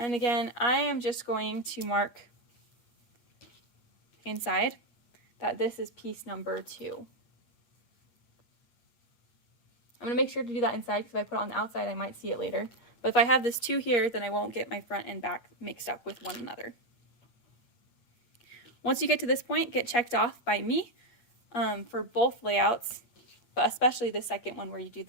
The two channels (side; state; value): right; late; 8.4 ms